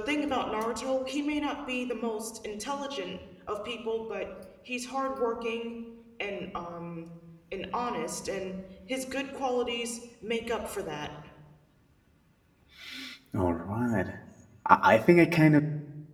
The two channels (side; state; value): both; identical; correlation 1.00